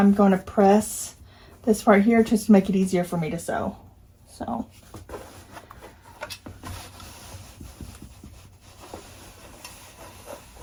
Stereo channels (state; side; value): identical; both; correlation 1.00